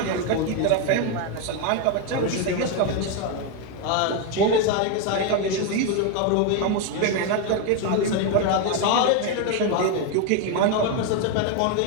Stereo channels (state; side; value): different; both; correlation 0.02